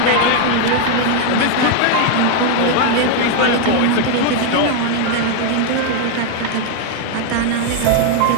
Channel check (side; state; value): both; different; correlation 0.00